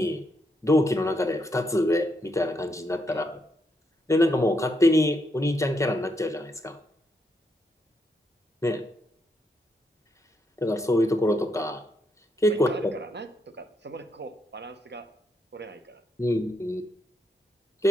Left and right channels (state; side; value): normal; both; correlation 0.78